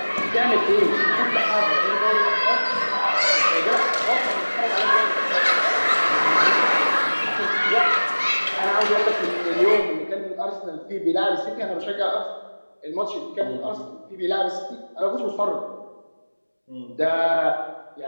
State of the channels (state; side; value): inverted; both; correlation -1.00